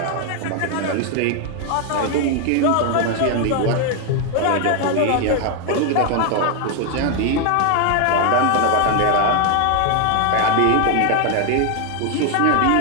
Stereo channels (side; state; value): both; different; correlation 0.00